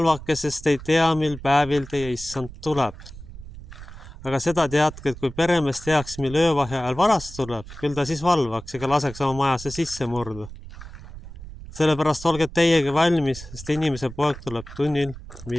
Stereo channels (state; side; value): noise; right; rumble, 14 dB below the sound